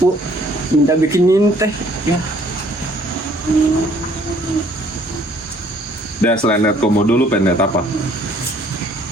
minta bikinin teh. Ya. Dan selain lihat komodo lu pengen lihat apa?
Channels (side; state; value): both; normal; correlation 0.61